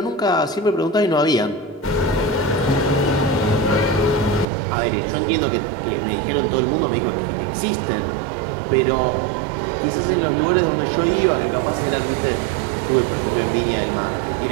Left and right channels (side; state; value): left; drops out; at 4.5 s